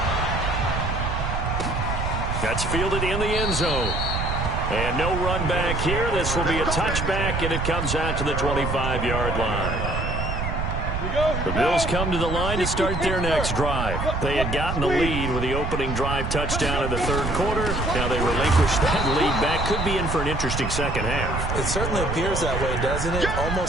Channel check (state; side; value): noise; right; rumble, 2 dB below the sound